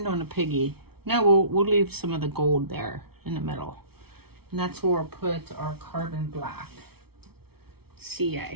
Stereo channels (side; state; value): left; late; 0.95 ms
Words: on a piggy. No, we'll leave some of the gold there in the middle. And that's where we'll put our carbon black.